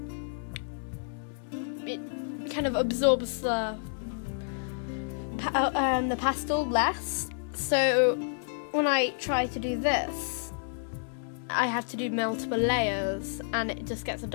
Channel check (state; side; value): silent; right; digital silence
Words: it kind of absorbs the pastel less, so when I try to do this, I have to do multiple layers and it just gets a